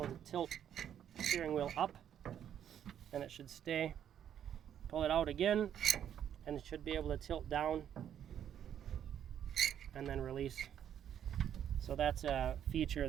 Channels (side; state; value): left; quieter; 9.6 dB